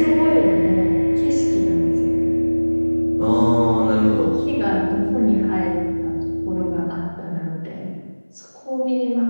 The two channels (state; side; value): inverted; both; correlation -1.00